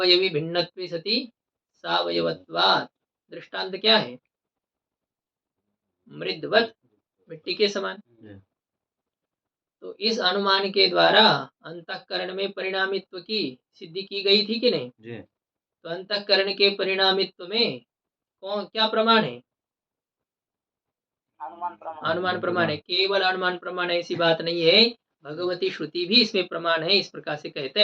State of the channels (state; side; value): identical; both; correlation 1.00